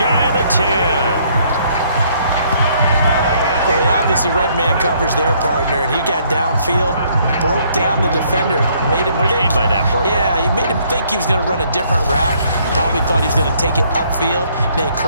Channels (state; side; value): inverted; both; correlation -0.66